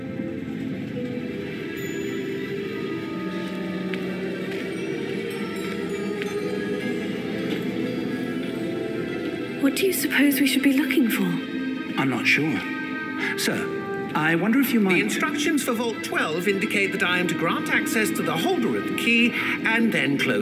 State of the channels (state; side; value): identical; both; correlation 1.00